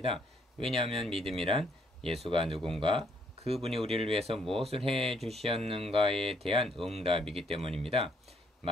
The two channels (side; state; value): both; normal; correlation 0.69